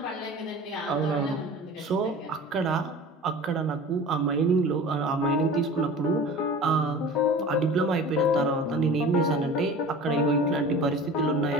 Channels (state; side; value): normal; both; correlation 0.38